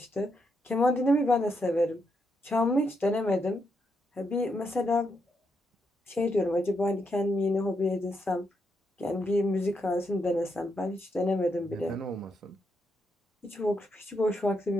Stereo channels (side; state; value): both; normal; correlation 0.80